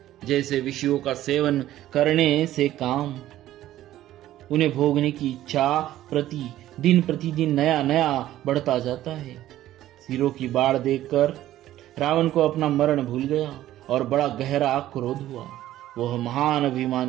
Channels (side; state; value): left; quieter; 13.7 dB